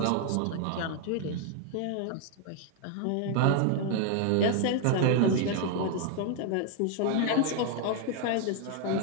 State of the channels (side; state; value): both; different; correlation 0.00